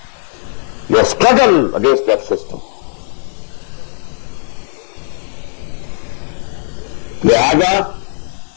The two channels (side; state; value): right; silent; 68 dB below the other